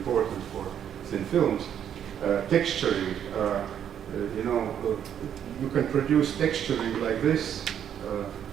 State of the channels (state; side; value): quieter; left; 9.2 dB